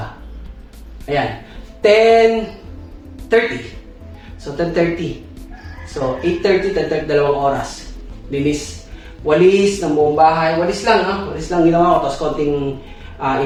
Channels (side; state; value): both; identical; correlation 1.00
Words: Ayan, 10:30. So, 10:30. So, 8:30, 10:30, 2 oras. Linis. Walis ng buong bahay. Walis lang, Walis lang ginawa ko. Tapos konting